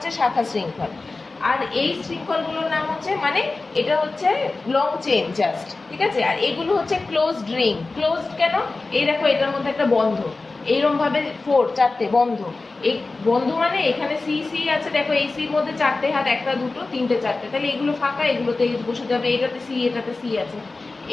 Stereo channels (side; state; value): right; quieter; 3.5 dB